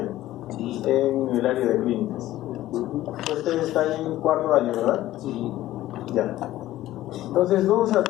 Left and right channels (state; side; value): quieter; right; 14.9 dB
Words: en el área de clínicas. Ustedes están en cuarto año, ¿verdad? Sí. Ya. Entonces vamos a